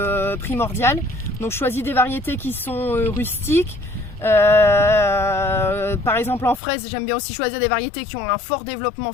primordial. Donc je choisis des variétés qui sont rustiques. Par exemple en fraise, j'aime bien aussi choisir des variétés qui ont un fort développement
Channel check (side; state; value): right; drops out; at 6.6 s